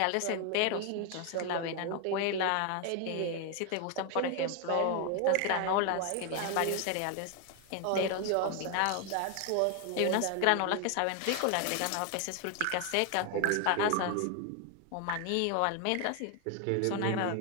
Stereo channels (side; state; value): both; different; correlation 0.01